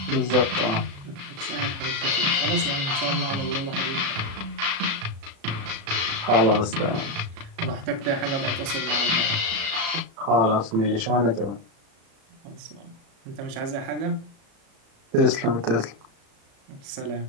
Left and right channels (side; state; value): left; late; 36 ms